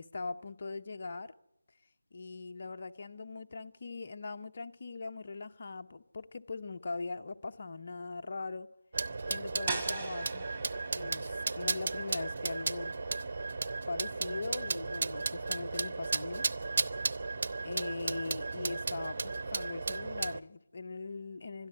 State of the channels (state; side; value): inverted; both; correlation -0.92